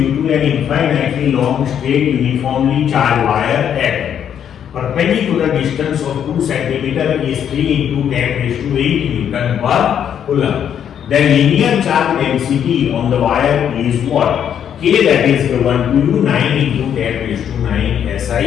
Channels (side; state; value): right; quieter; 9.0 dB